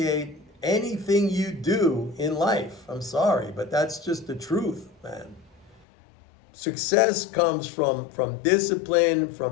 anything you do in life. I'm sorry, but that's just the truth, man. Success comes from discipline,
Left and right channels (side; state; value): right; drops out; at 5.8 s